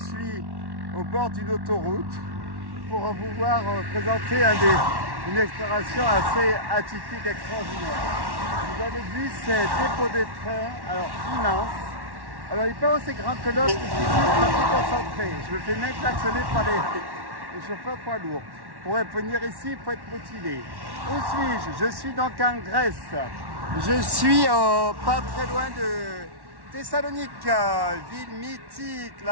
au bord d'une autoroute pour vous voir présenter une exploration assez atypique, extraordinaire. Vous avez vu ces dépôts de train, alors immense. Alors il n'est pas aussi grand que l'autre, je suis très concentré. Je me fais même klaxonner par les chauffeurs poids lourds. Pour venir ici, il faut être motivé. Où suis-je? Je suis donc en Grèce. Je suis pas très loin de Thessalonique, ville mythique,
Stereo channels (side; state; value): left; late; 1.1 ms